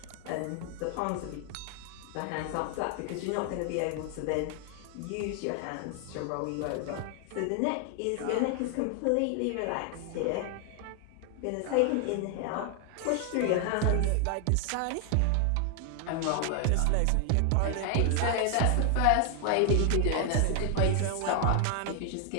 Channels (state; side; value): different; both; correlation 0.00